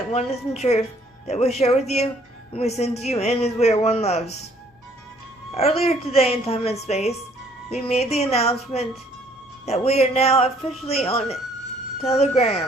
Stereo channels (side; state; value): both; normal; correlation 0.61